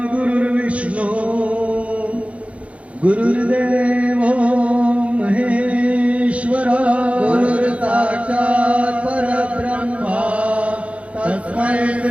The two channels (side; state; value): left; late; 0.063 ms